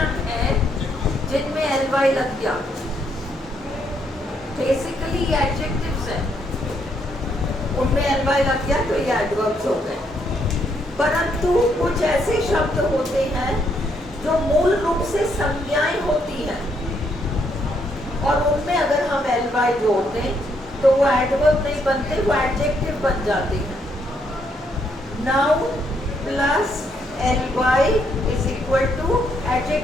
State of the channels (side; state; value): both; normal; correlation 0.74